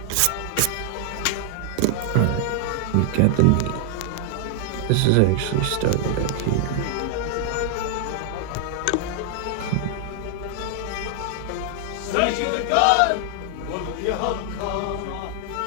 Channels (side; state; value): both; different; correlation 0.00